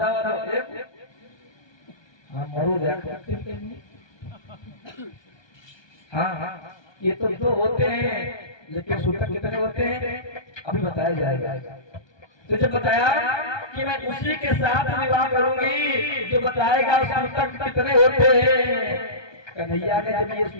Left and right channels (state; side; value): late; right; 1.2 ms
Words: वाला, एक हाँ मरो हाँ ये तो दो होते हैं, लेकिन सूतक कितने होते हैं अभी बताया जाएगा। तो जब बताया कि मैं उसी के साथ विवाह करूंगी जो बताएगा सूतक कितने होते हैं। कन्हैया ने जब ये